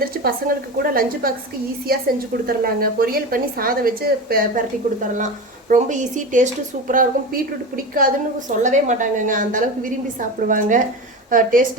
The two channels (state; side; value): normal; both; correlation 0.25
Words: பசங்களுக்கு கூட லஞ்சு பாக்ஸுக்கு ஈஸியாக செஞ்சு கொடுத்துர்லாங்க. பொரியல் பண்ணி சாதம் வச்சு பரட்டி கொடுத்துடலாம். ரொம்ப ஈஸி, டேஸ்ட்டு சூப்பராக இருக்கும். பீட்ரூட் பிடிக்காதுன்னு சொல்லவே மாட்டாங்கங்க, அந்தளவுக்கு விரும்பி சாப்பிடுவாங்க.